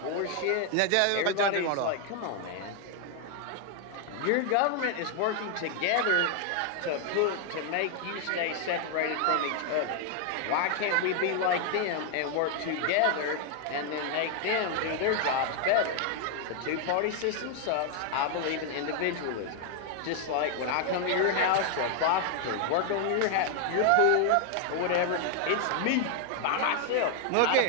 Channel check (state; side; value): different; both; correlation 0.00